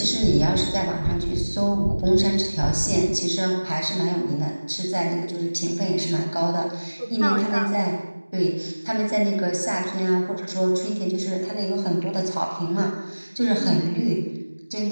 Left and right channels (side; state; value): both; inverted; correlation -1.00